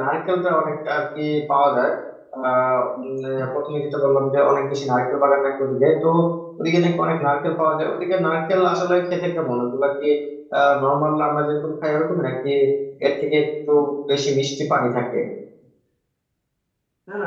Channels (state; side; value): identical; both; correlation 1.00